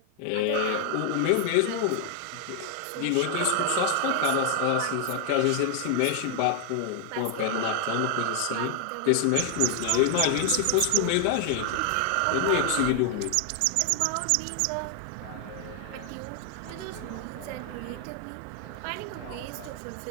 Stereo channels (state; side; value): different; both; correlation 0.00